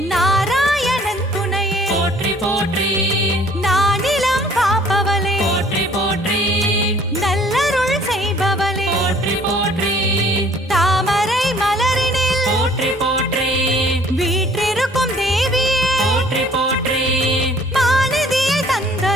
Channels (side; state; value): both; normal; correlation 0.56